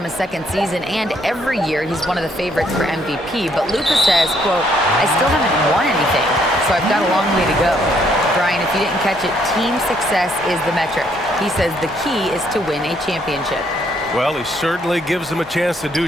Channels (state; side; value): normal; both; correlation 0.69